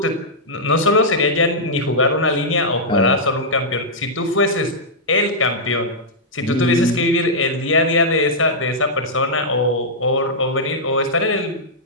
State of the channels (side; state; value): both; normal; correlation -0.09